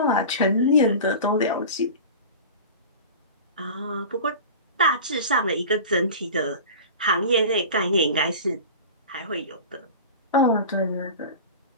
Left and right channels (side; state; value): both; inverted; correlation -0.34